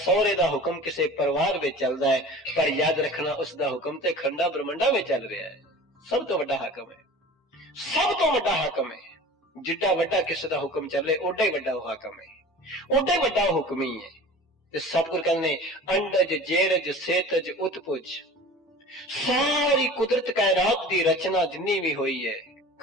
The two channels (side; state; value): both; normal; correlation 0.40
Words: दा हुक्म किसे परिवार विच चलदा है। पर याद रखना, उस दा हुक्म ते खंडा ब्रह्मंडा विच चल रहा है। सब तो वड्डा हाकम है, सब तो वड्डा हाकम है। जिड्डा वड्डा किसे दा हुक्म चले, ओडा ही वड्डा हाकम है, ओडा ही वड्डा हुक्मी है। ते सतगुरु कहने अंडज जेरज सेतज उत्पुज, सारी कुदरत कायनात दी रचना जिन्नी भी हुई है,